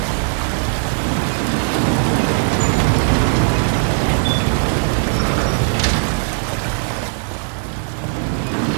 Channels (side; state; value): left; silent; 67 dB below the other